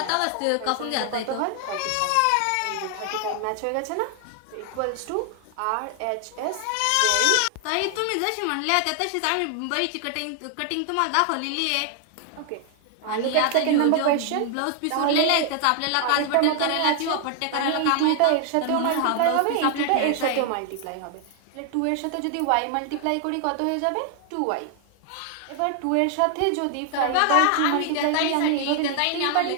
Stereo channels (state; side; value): different; both; correlation 0.00